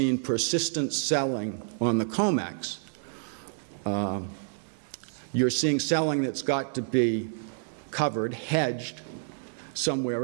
persistent selling on the COMEX, you're seeing selling that's got to be covered, hedged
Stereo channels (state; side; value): silent; left; 59 dB below the other